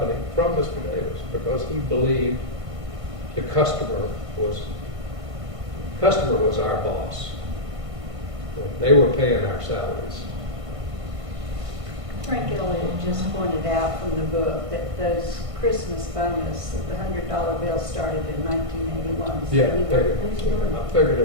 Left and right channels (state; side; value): late; left; 1.5 ms